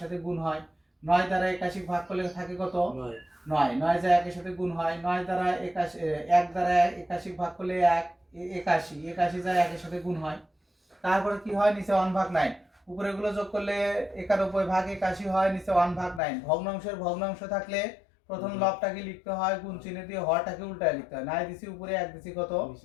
সাথে গুণ হয়। 9 দ্বারা 81 ভাগ করলে থাকে কত, 9, 9 যায় 1 এর সাথে গুণ হয়। 9 দ্বারা 81, 1 দ্বারা 81 ভাগ করলে 1, 81, 81 যায় 1 এর সাথে গুণ হয়। তারপরে কি হয়, নিচে 1/9, উপরে গুলো যোগ করলে 91 ভাগ 81 হয়, নিচে 1/9। ভগ্নাংশের ভগ্নাংশ থাকলে প্রথম লবটাকে লিখতে হয় গুণ চিহ্ন দিয়ে, হরটাকে উল্টায় লিখতে হয়। 9 দিছি উপরে, 1 দিছি কত,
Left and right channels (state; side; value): drops out; right; at 16.2 s